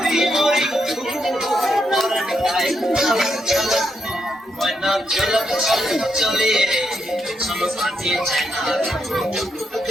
চলে শোনো পাতি চায়না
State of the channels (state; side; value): normal; both; correlation 0.80